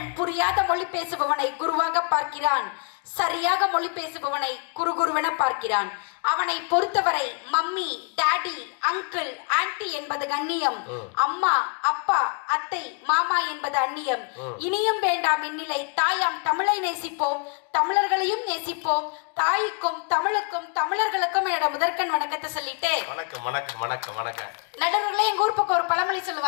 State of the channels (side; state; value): right; quieter; 37.4 dB